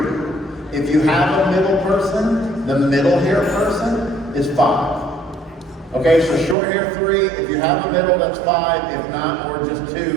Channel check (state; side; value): drops out; left; at 6.6 s